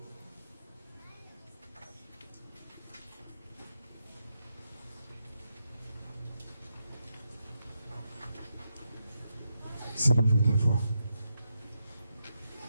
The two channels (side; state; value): both; inverted; correlation -0.85